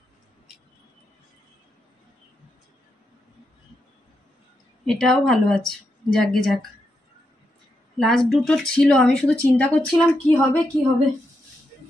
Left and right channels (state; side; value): normal; both; correlation 0.83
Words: এটাও ভালো আছে, যাকগে যাক। লাস্ট দুটো ছিল, আমি শুধু চিন্তা করছিলাম কি হবে কি হবে।